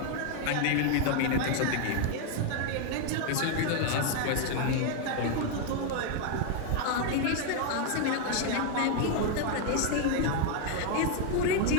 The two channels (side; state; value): both; different; correlation 0.00